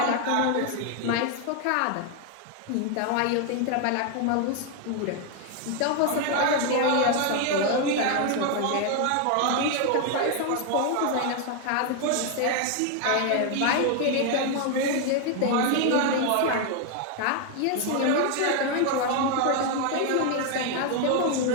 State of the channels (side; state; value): both; different; correlation 0.01